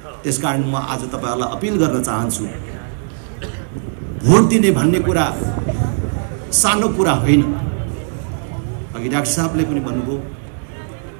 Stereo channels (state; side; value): silent; left; digital silence